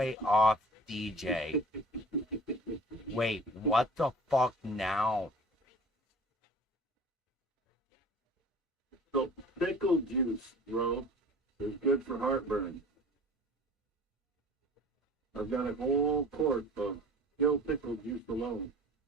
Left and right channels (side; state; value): both; normal; correlation 0.44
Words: off, DJ. Wait, what the fuck now? So pickle juice, bro, is good for heartburn. I've got a whole quart of dill pickle juice alone.